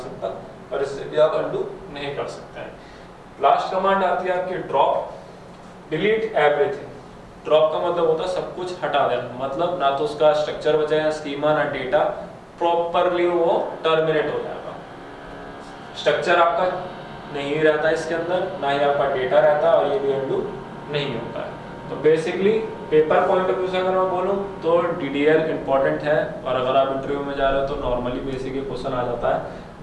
और इससे भी आप अनडू नहीं कर सकते हैं। लास्ट कमांड आती है आपकी ड्रॉप। Delete everything. ड्रॉप का मतलब होता है सब कुछ हटा देना, मतलब ना तो उसका स्ट्रक्चर बचेगा, स्कीमा, ना डेटा, प्रॉपरली वो टर्मिनेट हो जाएगा। स्ट्रक्चर आपका नहीं रहता इसके अंदर, ना ही आपका डेटा रहता, और ये भी अनडू नहीं होता है। तो basically paper point of view से अगर मैं बोलूँ तो DDL इंपॉर्टेंट है, और अगर आप इंटरव्यू में जा रहे हो तो नॉर्मली बेसिक क्वेश्चन आ जाता है।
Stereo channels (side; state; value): both; identical; correlation 1.00